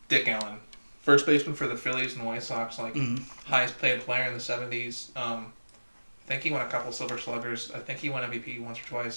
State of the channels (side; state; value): both; inverted; correlation -1.00